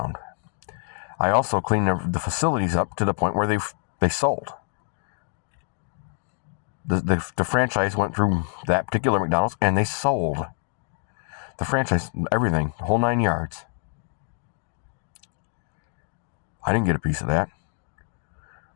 I also cleaned the facilities up to the point where they sold. The franchise went through that particular McDonald's and they sold. The franchise, everything, the whole 9 yards. I didn't get a piece of that.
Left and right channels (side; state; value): right; silent; 57 dB below the other